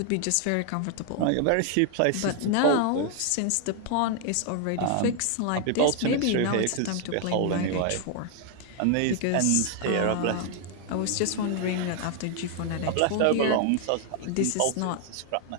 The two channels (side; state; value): both; different; correlation 0.00